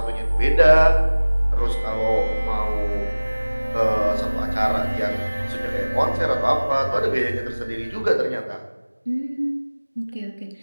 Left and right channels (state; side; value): inverted; both; correlation -1.00